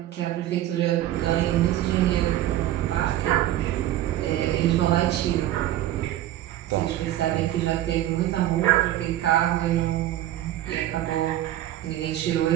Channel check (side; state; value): left; quieter; 13.5 dB